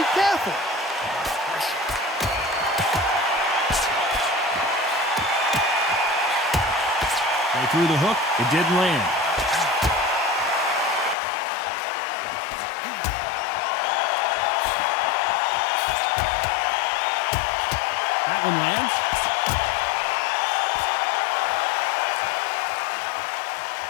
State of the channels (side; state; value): right; drops out; at 11.2 s